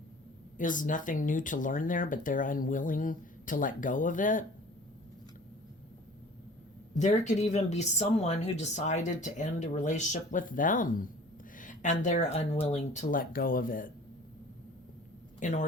is nothing new to learn there, but they're unwilling to let go of it. There could even be someone who decided to end a relationship with them, and they're unwilling to let go of it in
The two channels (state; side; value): normal; both; correlation 0.47